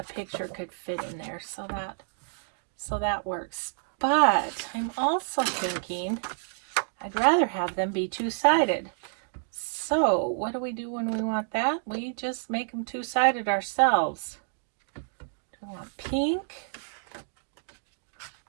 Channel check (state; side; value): silent; left; digital silence